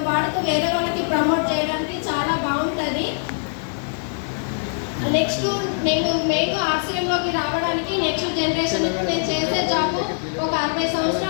వాడుతూ వేరే వాళ్ళకి ప్రమోట్ చేయడానికి చాలా బాగుంటుంది. నెక్స్ట్ నేను ఆర్సీఎంలోకి రావడానికి నెక్స్ట్ జనరేషన్కి నేను చేసే జాబ్ ఒక 60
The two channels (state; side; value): silent; right; digital silence